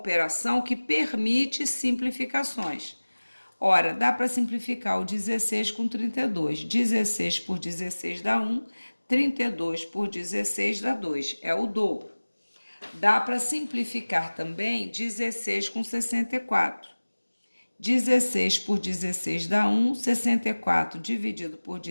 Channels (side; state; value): both; inverted; correlation -1.00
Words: que permite simplificações. Ora, dá para simplificar o 16 com 32. 16 por 16 dá 1, 32 por 16 dá 2, é o dobro. Dá para simplificar também 16 com 64. 16 por 16 dá 1, 64 dividido por